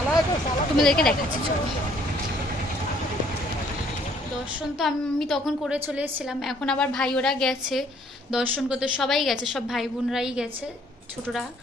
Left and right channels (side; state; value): both; normal; correlation 0.62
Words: তোমাদেরকে দেখাচ্ছি, চলো। দর্শন তো আমি তখন করে চলে এসেছিলাম, এখন আবার ভাই ওরা গেছে দর্শন করতে, সবাই গেছে, সব ভাই বোনরাই গেছে, ছোটরা।